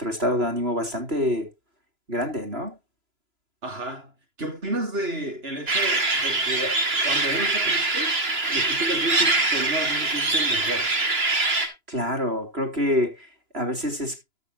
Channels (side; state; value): left; late; 2.9 ms